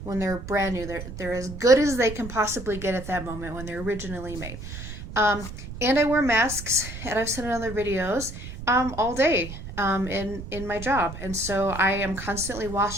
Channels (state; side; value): noise; right; rumble, 10 dB below the sound